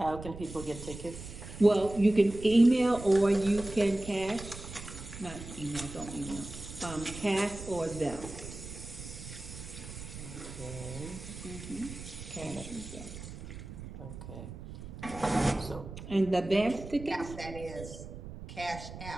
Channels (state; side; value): noise; right; rumble, 11 dB below the sound